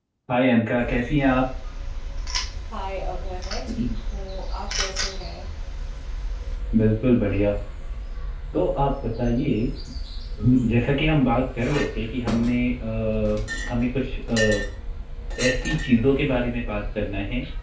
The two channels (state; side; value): identical; both; correlation 1.00